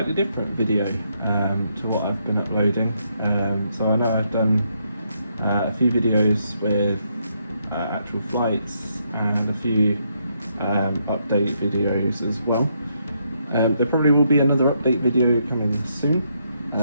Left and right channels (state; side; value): inverted; both; correlation -0.76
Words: different video to what I've been uploading. So I know I've done a few videos with actual flights and a few update videos as well. There probably will be another update video coming soon.